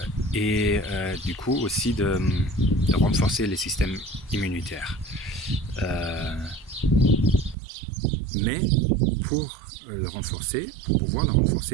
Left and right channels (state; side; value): drops out; left; at 7.6 s